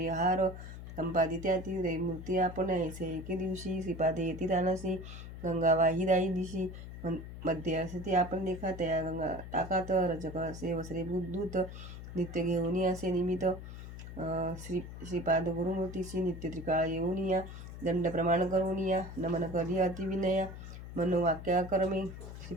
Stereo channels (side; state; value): left; noise; hum, 11 dB below the sound